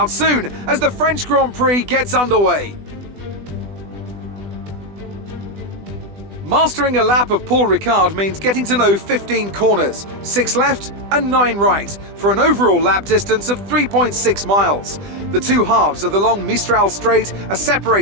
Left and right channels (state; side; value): late; left; 20 ms